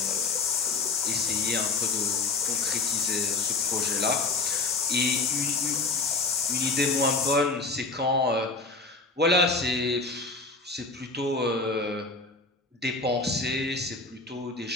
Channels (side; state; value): right; quieter; 3.6 dB